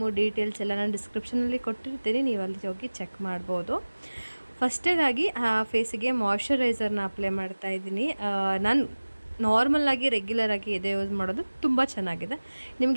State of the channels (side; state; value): both; inverted; correlation -1.00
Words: ಡೀಟೇಲ್ಸ್ ಎಲ್ಲ ನಾನು ಡಿಸ್ಕ್ರಿಪ್ಷನಲ್ಲಿ ಕೊಟ್ಟಿರ್ತೀನಿ, ನೀವು ಅಲ್ಲಿ ಹೋಗಿ ಚೆಕ್ ಮಾಡ್ಬೋದು. ಫಸ್ಟೇದಾಗಿ ಫೇಸಿಗೆ ಮಾಯ್ಶ್ಚರೈಸರ್ನ ಅಪ್ಲೈ ಮಾಡ್ತಾಯಿದ್ದೀನಿ. ನಾನು ನಾರ್ಮಲಾಗಿ ರೆಗ್ಯುಲರಾಗಿ ಎದೆ ಯೂಸ್ ಮಾಡೋದು ತುಂಬ ಚೆನ್ನಾಗಿದೆ.